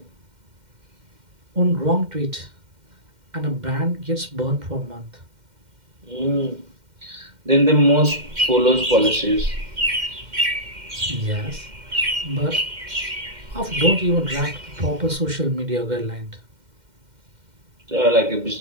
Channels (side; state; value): left; late; 2.1 ms